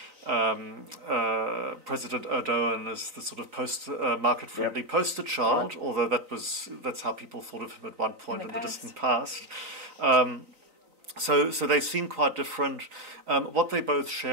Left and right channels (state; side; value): late; left; 3.9 ms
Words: President Erdogan as the sort of market-friendly poster child, although that's how people thought of him at one point in the distant past. So they seem quite different. What they both